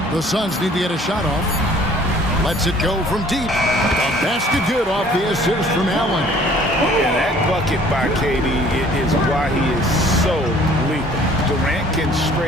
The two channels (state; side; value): normal; both; correlation 0.54